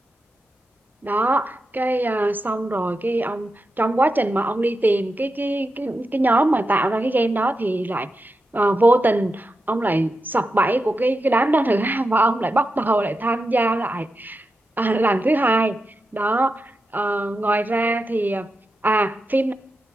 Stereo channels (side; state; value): both; normal; correlation 0.88